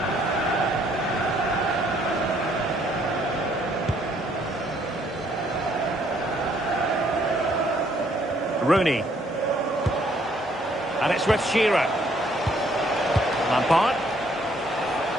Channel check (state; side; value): normal; both; correlation 0.66